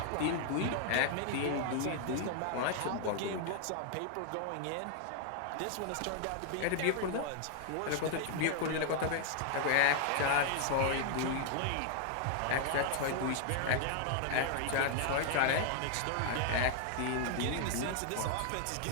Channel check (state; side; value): different; both; correlation 0.00